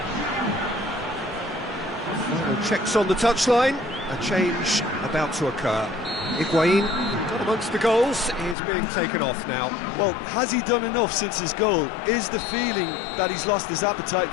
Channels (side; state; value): right; drops out; at 8.6 s